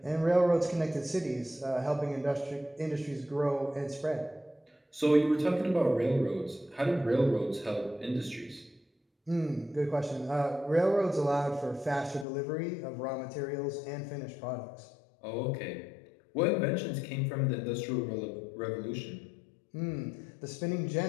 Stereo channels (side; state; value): right; drops out; at 12.2 s